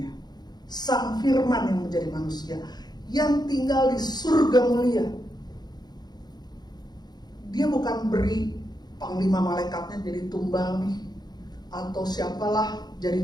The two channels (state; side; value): late; right; 0.20 ms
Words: Sang Firman yang menjadi manusia, yang tinggal di surga mulia. Dia bukan beri panglima malaikatnya jadi tumbal nih, atau siapalah